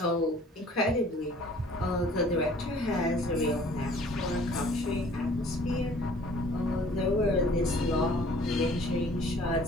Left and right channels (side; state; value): both; normal; correlation 0.53